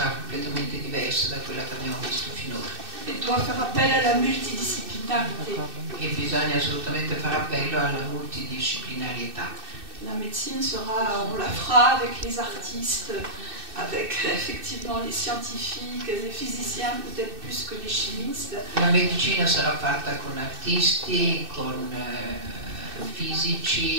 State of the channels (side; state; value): left; late; 2.6 ms